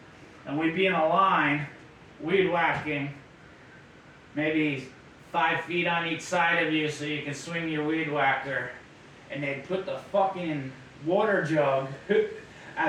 and we'd be in a line, weed whacking, maybe 5 feet on each side of you so you can swing your weed whacker, and they'd put the fucking water jug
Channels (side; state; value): both; identical; correlation 1.00